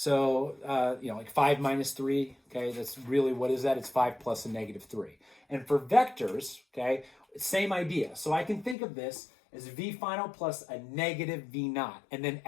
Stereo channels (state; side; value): drops out; right; at 8.8 s